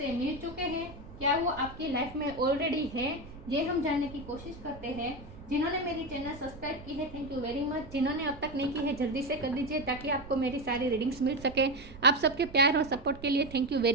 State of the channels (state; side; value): noise; right; rumble, 16 dB below the sound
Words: मिल चुके हैं, क्या वो आपकी लाइफ में ऑलरेडी है। ये हम जानने की कोशिश करते हैं। जिन्होंने मेरी चैनल सब्सक्राइब की है, थैंक यू वेरी मच। जिन्होंने अब तक नहीं की है, जल्दी से कर दीजिए ताकि आपको मेरी सारी रीडिंग्स मिल सके। आप सबके प्यार और सपोर्ट के लिए थैंक यू